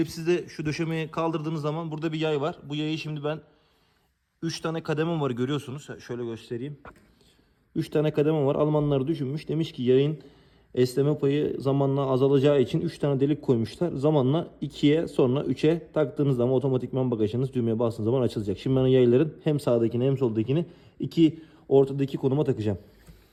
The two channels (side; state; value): both; identical; correlation 1.00